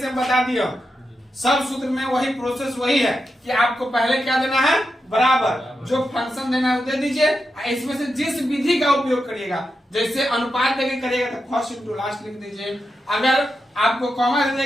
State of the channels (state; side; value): normal; both; correlation 0.88